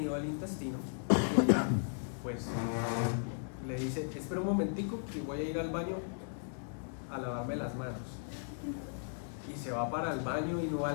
del intestino y ella, pues le dice: espera un momentico que voy a ir al baño a lavarme las manos, y se va para el baño y no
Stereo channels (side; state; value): right; silent; 54 dB below the other